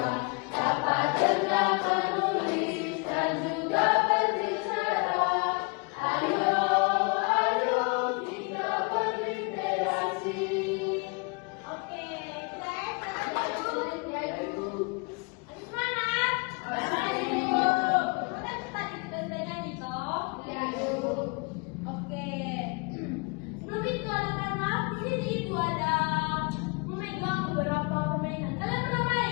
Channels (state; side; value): quieter; right; 32.3 dB